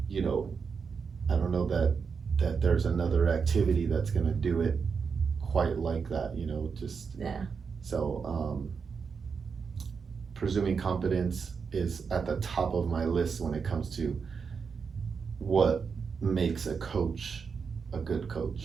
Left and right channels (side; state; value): left; quieter; 5.7 dB